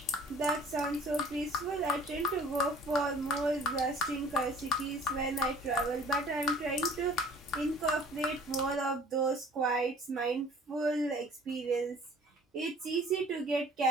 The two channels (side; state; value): both; normal; correlation 0.50